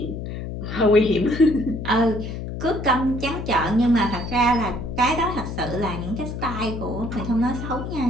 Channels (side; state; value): left; noise; hum, 6 dB below the sound